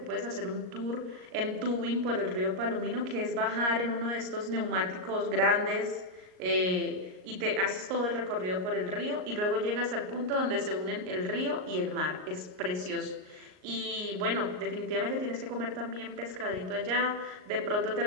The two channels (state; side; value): late; left; 38 ms